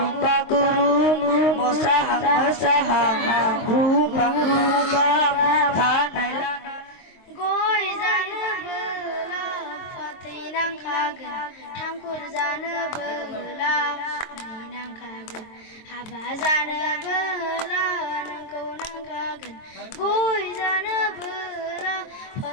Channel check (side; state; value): right; late; 23 ms